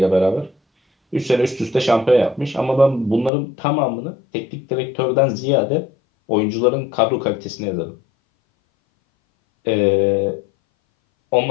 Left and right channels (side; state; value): right; drops out; at 3.3 s